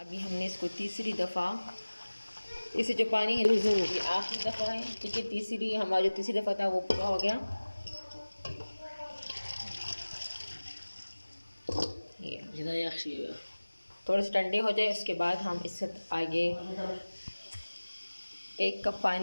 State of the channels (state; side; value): inverted; both; correlation -1.00